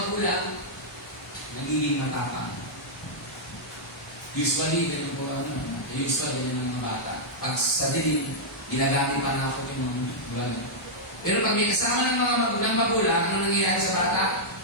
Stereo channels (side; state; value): both; normal; correlation -0.08